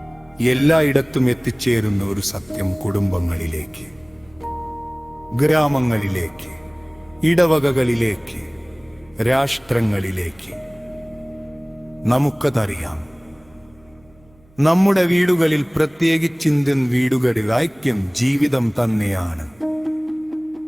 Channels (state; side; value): noise; right; hum, 30 dB below the sound